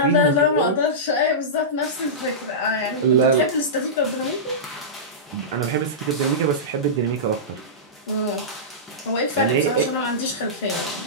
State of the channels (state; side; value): normal; both; correlation -0.17